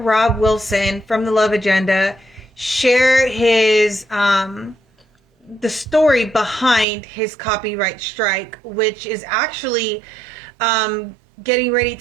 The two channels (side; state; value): left; drops out; at 6.9 s